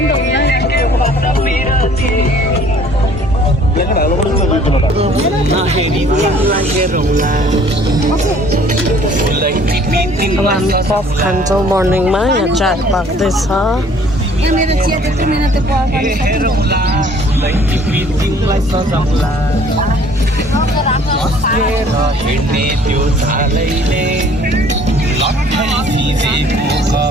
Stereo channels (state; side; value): normal; both; correlation 0.55